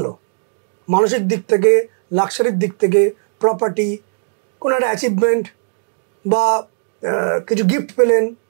মানসিক দিক থেকে, লাক্সারির দিক থেকে, প্রপার্টি, কোনো একটা অ্যাচিভমেন্ট বা কিছু গিফট পেলেন,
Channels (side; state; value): left; silent; digital silence